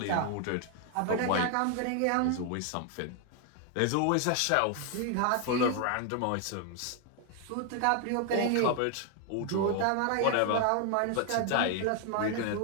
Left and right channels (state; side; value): different; both; correlation 0.00